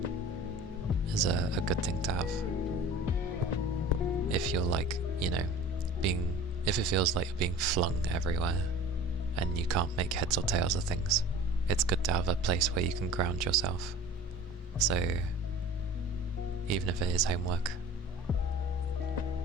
is a good thing to have. If you're like, you know, if it feels like you're being flung everywhere and you can't make heads or tails of things, it's good to have a place where you can ground yourself. So even if it is homework,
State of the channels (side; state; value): both; normal; correlation 0.42